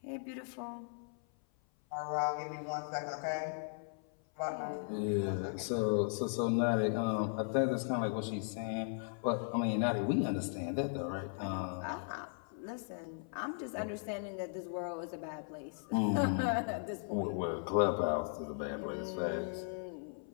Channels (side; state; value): right; silent; 53 dB below the other